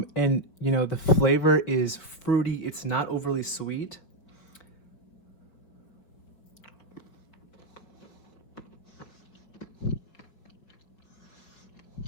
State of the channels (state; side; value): late; right; 5.1 ms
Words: you know, the flavor is fruity. It's not overly sweet.